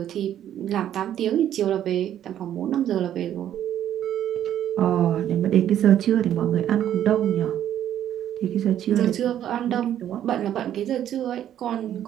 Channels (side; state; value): left; quieter; 10.9 dB